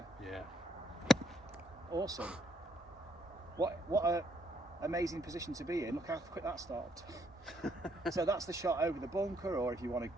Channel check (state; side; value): normal; both; correlation 0.70